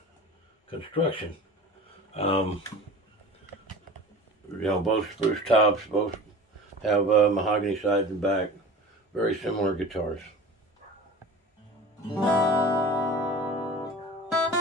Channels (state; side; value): normal; both; correlation 0.38